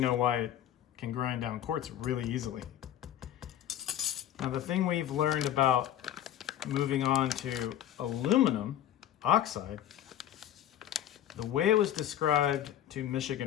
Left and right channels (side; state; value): right; quieter; 11.4 dB